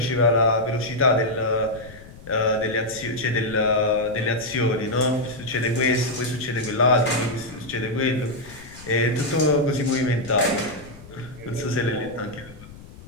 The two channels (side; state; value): left; noise; rumble, 18 dB below the sound